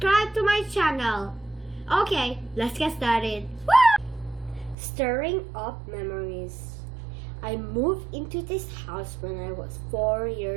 to my channel. Okay, let's get started. Woo! Stirring Up Memories. I moved into this house when I was 4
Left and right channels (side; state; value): left; drops out; at 4.8 s